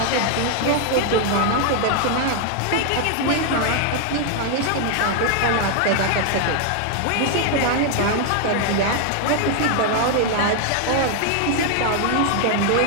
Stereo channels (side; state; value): both; different; correlation 0.00